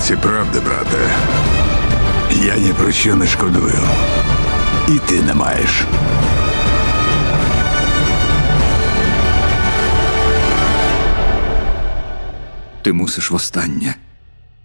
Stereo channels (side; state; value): both; inverted; correlation -1.00